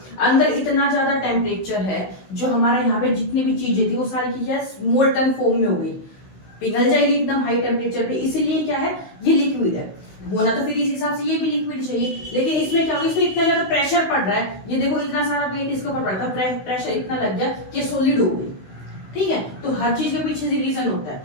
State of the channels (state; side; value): late; right; 16 ms